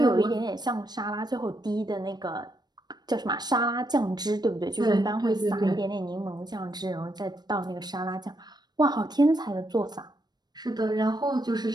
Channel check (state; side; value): late; left; 0.20 ms